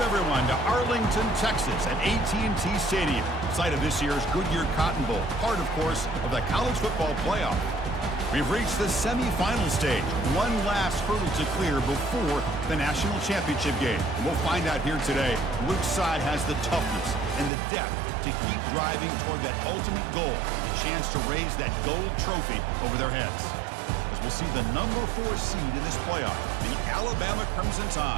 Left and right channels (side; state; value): left; drops out; at 17.5 s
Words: everyone, to Arlington, Texas at AT&T Stadium, site of this year's Goodyear Cotton Bowl, part, of course, of the college football playoff. We've reached the semifinal stage, one last hurdle to clear before the national championship game. And we'll find out here today which side has the toughness and the depth to keep driving toward that ultimate goal, the chance to raise that gold trophy over their heads. As we'll see the number 4 seed in this playoff, the Alabama Crimson